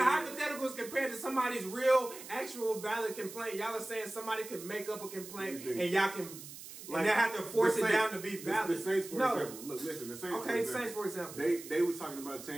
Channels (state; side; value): noise; right; hiss, 13 dB below the sound